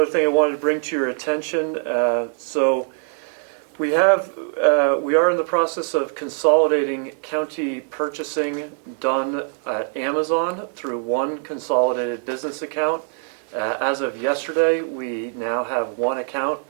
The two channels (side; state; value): left; silent; 61 dB below the other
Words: thing I wanted to bring to your attention. We are in the process of consolidating county purchasing done at Amazon through one consolidated business account. As of yesterday, we now have one account.